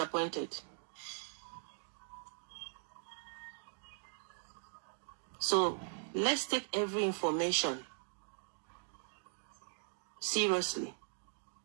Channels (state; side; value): silent; left; 51 dB below the other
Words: So let's take every information seriously.